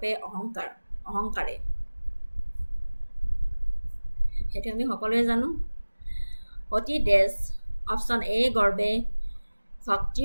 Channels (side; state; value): both; inverted; correlation -1.00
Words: অহংকাৰে সেইটো আমি সকলোৱে জানো অতি ড্যাশ অপশ্যন এ গৰ্বে ভক্তি